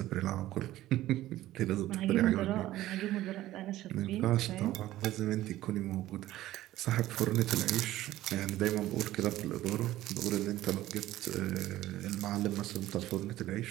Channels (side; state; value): left; quieter; 15.0 dB